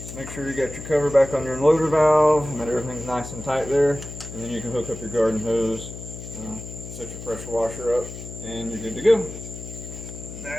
Make sure you got your cover back on your unloader valve and that everything's nice and tight there, and then you can hook up your garden hose, set your pressure washer up, and you're good to go.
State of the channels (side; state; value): left; noise; hum, 11 dB below the sound